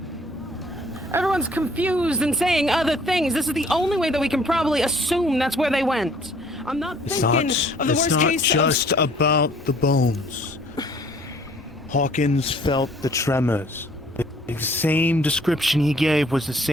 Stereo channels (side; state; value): both; normal; correlation 0.57